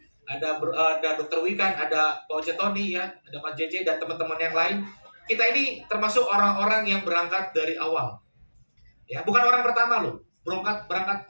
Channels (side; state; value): both; inverted; correlation -1.00